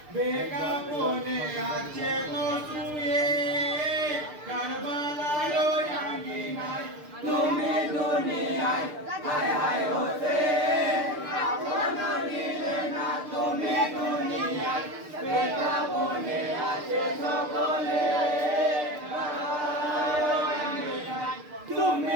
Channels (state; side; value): late; left; 6.7 ms